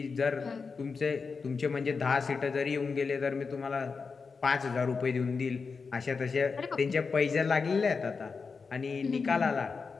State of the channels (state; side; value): quieter; right; 4.9 dB